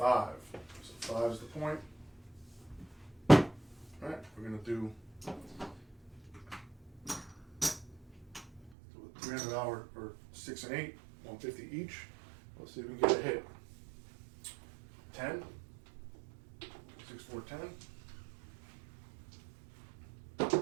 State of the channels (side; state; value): left; drops out; at 8.7 s